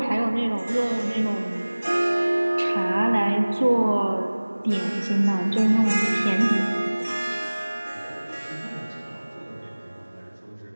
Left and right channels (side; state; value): both; inverted; correlation -1.00